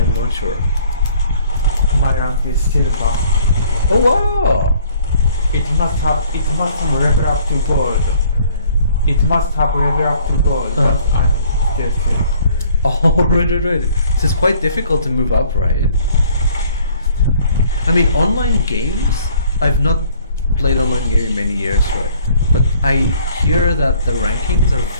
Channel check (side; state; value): both; inverted; correlation -0.58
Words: not sure. My rank is silver. Oh wow! It must level up to gold. It must have level up to gold, but I'm still silver. Oh, right. So it's quite difficult to move up, right? I mean, online games, I've not played online game in many years, right? But I hear that the rankings are